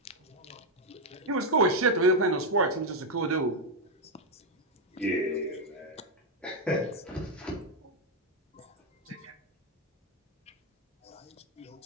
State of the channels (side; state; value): both; normal; correlation 0.03